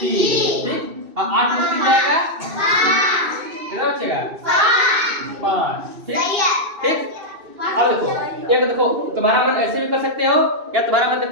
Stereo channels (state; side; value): late; left; 2.6 ms